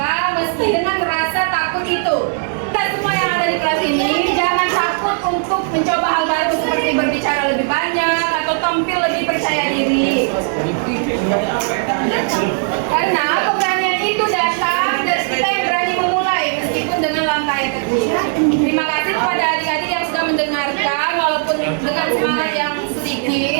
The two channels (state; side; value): silent; left; 61 dB below the other